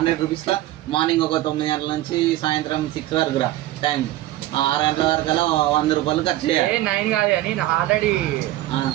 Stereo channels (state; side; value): quieter; left; 15.5 dB